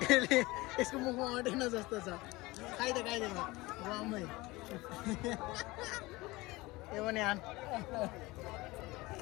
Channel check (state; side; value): quieter; right; 21.4 dB